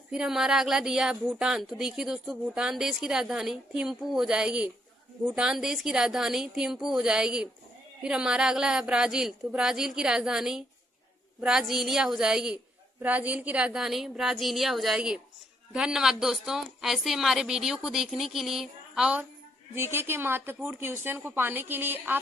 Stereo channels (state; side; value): normal; both; correlation 0.73